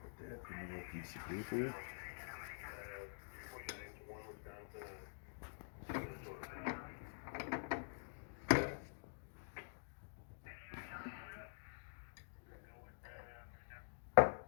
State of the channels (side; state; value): right; silent; digital silence